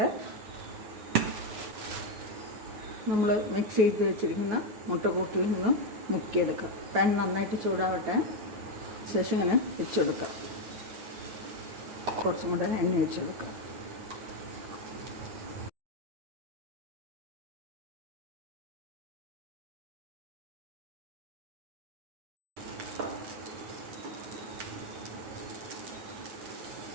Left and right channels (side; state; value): left; late; 9.2 ms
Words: നമ്മൾ മിക്സ് ചെയ്ത് വെച്ചിരിക്കുന്ന മുട്ടക്കൂട്ടിൽ നിന്ന് മുക്കിയെടുക്കാം. പാൻ നന്നായിട്ട് ചൂടാവട്ടെ. ശേഷം ഇങ്ങനെ വെച്ച് കൊടുക്കാം. കുറച്ചും കൂടെ എണ്ണ വെച്ച് കൊടുക്കാം.